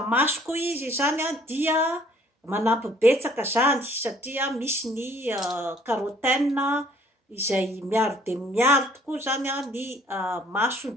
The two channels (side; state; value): both; normal; correlation 0.59